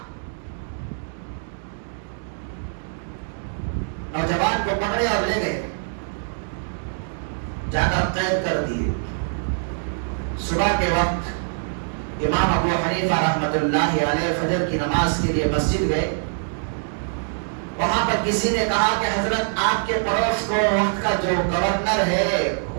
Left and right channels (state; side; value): silent; left; digital silence